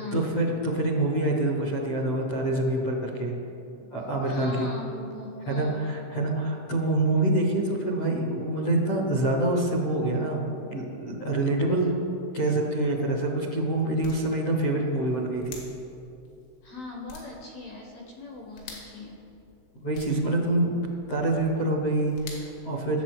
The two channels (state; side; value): late; right; 16 ms